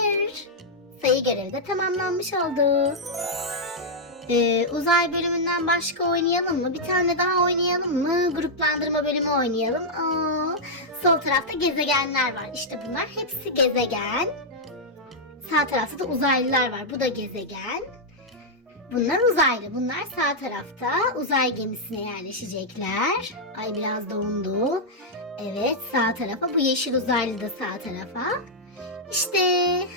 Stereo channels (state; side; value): normal; both; correlation -0.06